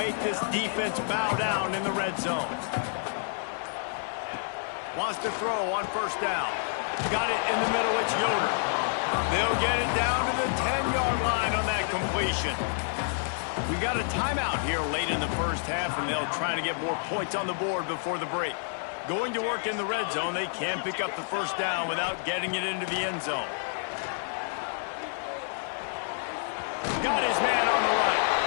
this defense bow down in the red zone. Wants to throw on 1st down. Got it in the middle. It's Yoder. They'll get it down to the 10-yard line on that completion. We got a timeout here late in the 1st half, and they'll try to get more points on the board before the break. Going to work in the red zone, they can't pick up the 1st down without getting it into the end zone. Got his man on the right.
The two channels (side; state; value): right; silent; 59 dB below the other